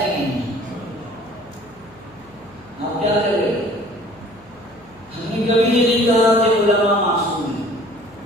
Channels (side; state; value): left; noise; hum, 28 dB below the sound